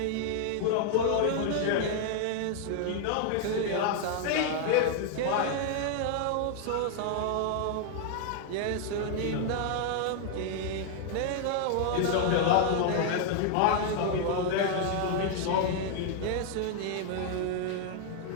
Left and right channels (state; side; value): different; both; correlation 0.00